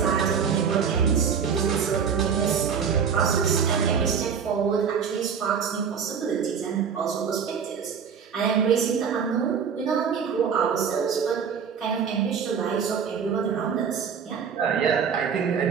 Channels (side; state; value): left; quieter; 6.8 dB